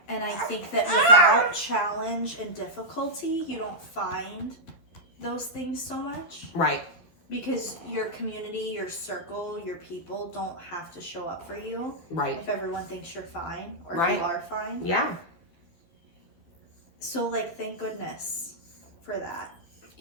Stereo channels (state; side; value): late; right; 12 ms